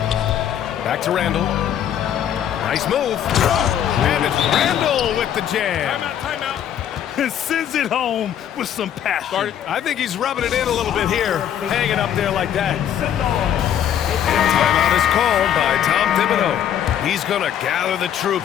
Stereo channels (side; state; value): right; quieter; 10.0 dB